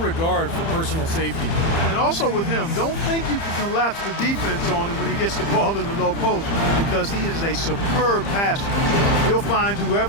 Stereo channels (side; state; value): right; late; 30 ms